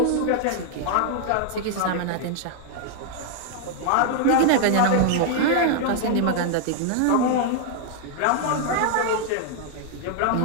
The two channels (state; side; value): different; both; correlation 0.00